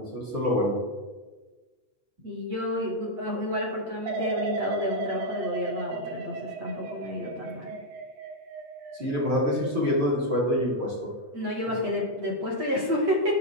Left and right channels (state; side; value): late; left; 8.2 ms